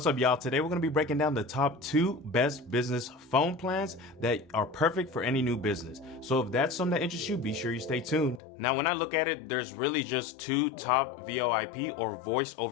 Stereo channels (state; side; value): drops out; right; at 8.4 s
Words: up, y'all? Today we're going to be breaking down the top 2 best business phone plans that are perfect for any new business. So if that's something that interests you, be sure you stay tuned. Now, when I look at it, there's really just 2 top VoIP or voice